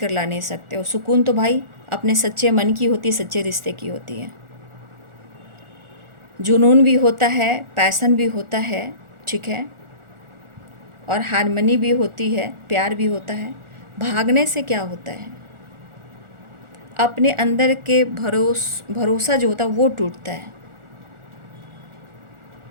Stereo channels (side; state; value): left; late; 1.4 ms